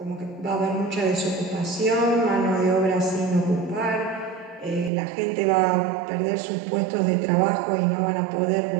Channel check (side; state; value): left; drops out; at 4.9 s